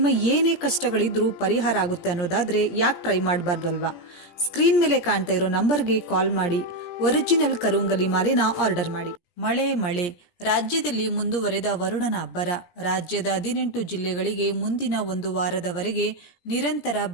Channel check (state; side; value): late; right; 17 ms